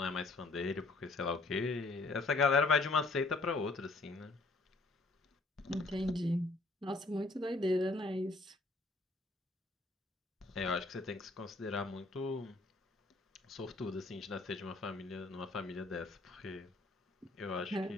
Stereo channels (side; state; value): right; quieter; 3.2 dB